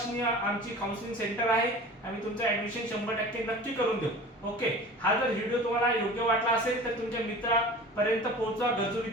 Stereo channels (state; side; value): normal; both; correlation 0.39